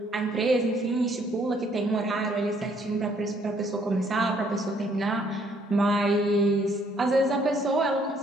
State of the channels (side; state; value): both; normal; correlation 0.66